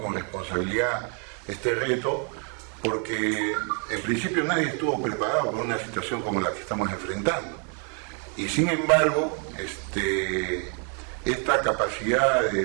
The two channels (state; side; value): quieter; left; 39.0 dB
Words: con responsabilidad este reto, porque en principio nadie estuvo preparado para una situación como la que estamos enfrentando. Y sin embargo, esta capacidad